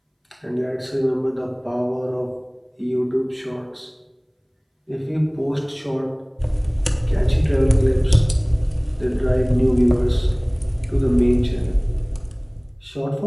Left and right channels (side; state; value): both; identical; correlation 1.00